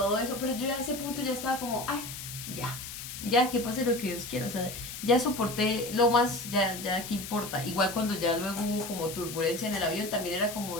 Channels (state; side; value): noise; left; hiss, 9 dB below the sound